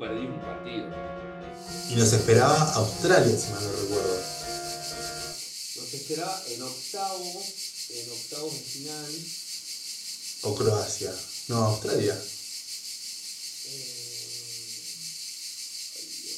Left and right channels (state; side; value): identical; both; correlation 1.00